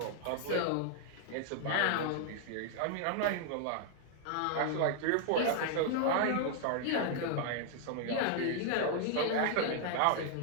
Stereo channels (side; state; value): both; different; correlation 0.00